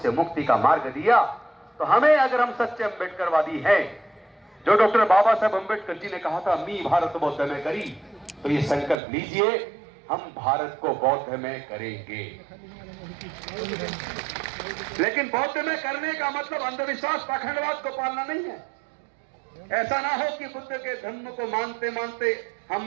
से मुक्ति का मार्ग दिया। तो हमें, अगर हम सच्चे अम्बेडकरवादी हैं, जो डॉक्टर बाबा साहब अम्बेडकर जी ने कहा था मी भारत बौद्ध में करी, तो ये संकल्प लीजिए, हम भारत को बौद्ध में करेंगे। लेकिन बौद्ध में करने का मतलब अंधविश्वास पाखंडवाद को पालना नहीं है। ऐसा ना हो कि बुद्ध के धर्म को मानते मानते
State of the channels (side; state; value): left; drops out; at 9.0 s